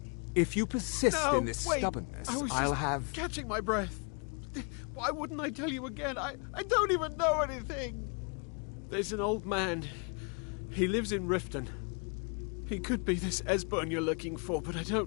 If you persist No, in this wait. stubbornness, I was I'll just have... catching my breath. Why wouldn't I tell you again? I don't even know anything. There's an old man. He lives in Riften. He could be this Esbern you're looking for, but I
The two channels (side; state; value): right; quieter; 36.6 dB